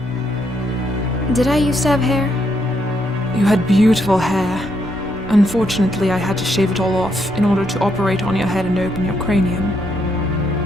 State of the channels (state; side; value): normal; both; correlation 0.76